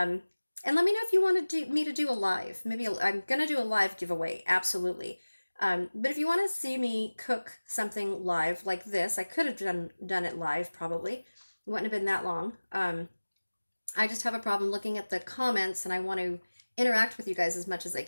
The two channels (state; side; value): inverted; both; correlation -1.00